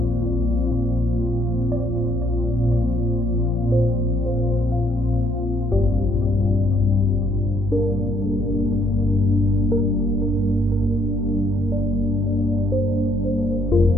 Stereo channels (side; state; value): both; normal; correlation 0.68